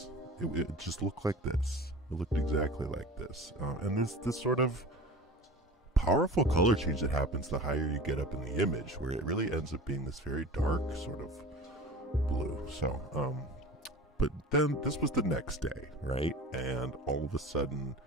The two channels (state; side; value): normal; both; correlation 0.37